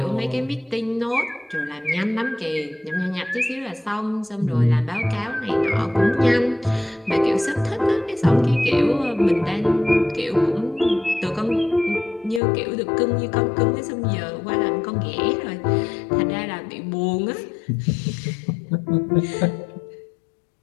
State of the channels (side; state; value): right; drops out; at 12.4 s